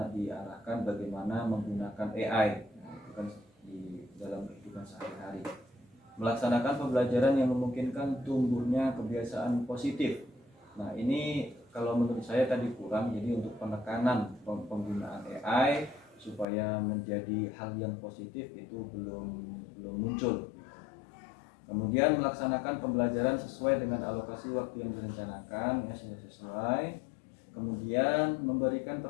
diarahkan bagaimana menggunakan AI itu kan di dalam kehidupan sehari-hari. Melaksanakan pembelajaran yang memungkinkan tumbuhnya kebiasaan positif. Nah, ini kalau menurut saya tadi kurang. Jadi untuk penekanan penggunaan AI supaya menjadi hal yang positif itu belum muncul. Kemudian melaksanakan pembelajaran sesuai dengan alokasi waktu yang direncanakan, ya sudah sesuai. Kemudian memberikan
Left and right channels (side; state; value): right; drops out; at 16.4 s